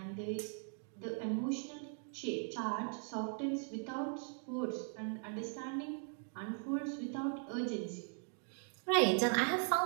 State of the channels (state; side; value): silent; left; 51 dB below the other